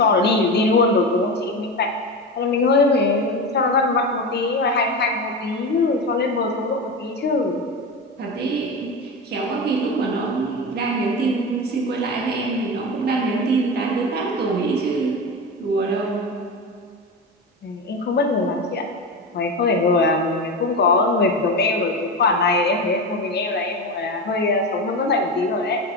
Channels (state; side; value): normal; both; correlation 0.21